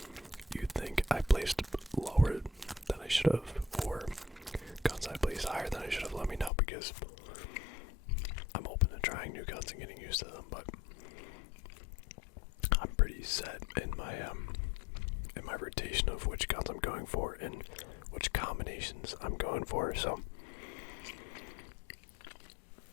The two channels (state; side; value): drops out; right; at 6.5 s